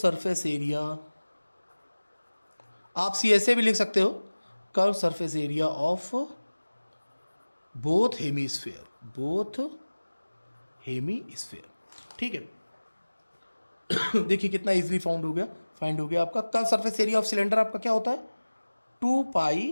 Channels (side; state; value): both; inverted; correlation -1.00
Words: area, आप CSA भी लिख सकते हो, curve surface area of both hemisphere. ठीक है, देखिए कितना इजीली फाइंड हो गया आपका curve surface area of cylinder. आपका क्या होता है?